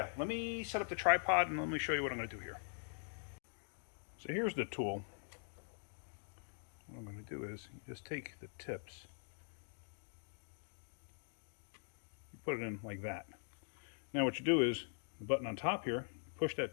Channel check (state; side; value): silent; right; digital silence